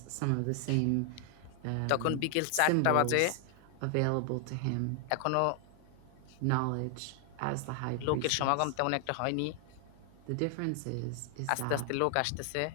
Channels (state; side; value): different; both; correlation 0.00